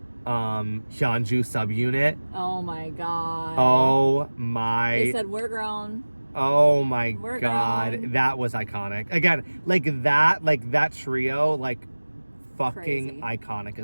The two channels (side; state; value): both; inverted; correlation -1.00